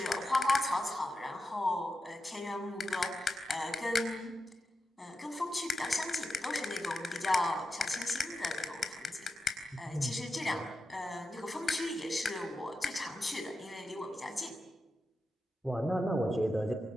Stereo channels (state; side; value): normal; both; correlation 0.89